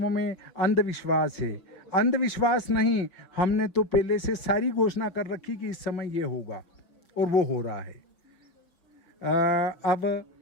में अंधविश्वास है। अंधविश्वास नहीं, हमने तो पहले से सारी घोषणा कर रखी कि इस समय ये होगा और वो हो रहा है। अब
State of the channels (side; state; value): right; late; 5.5 ms